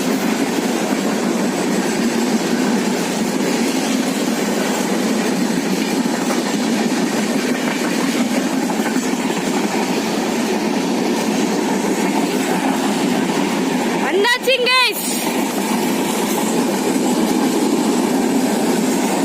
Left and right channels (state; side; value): identical; both; correlation 1.00